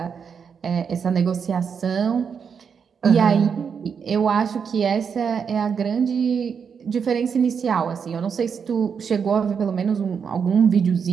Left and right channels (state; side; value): quieter; left; 6.6 dB